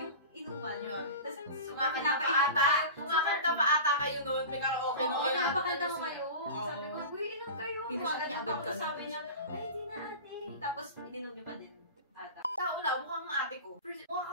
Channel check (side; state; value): both; inverted; correlation -0.32